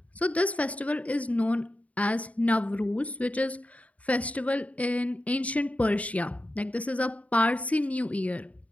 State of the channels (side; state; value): right; late; 0.068 ms